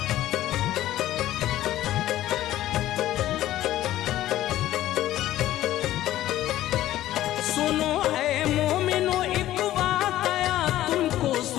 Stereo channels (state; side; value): quieter; right; 14.1 dB